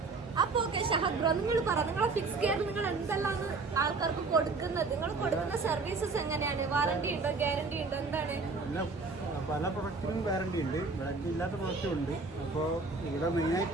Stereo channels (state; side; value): quieter; left; 4.0 dB